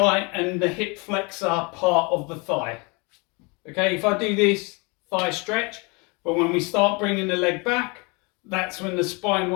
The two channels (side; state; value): right; quieter; 29.6 dB